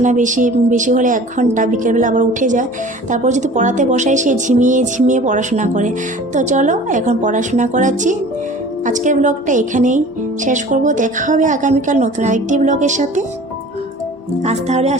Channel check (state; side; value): normal; both; correlation 0.44